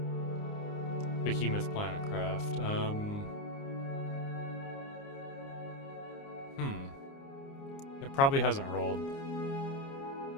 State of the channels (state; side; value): late; right; 29 ms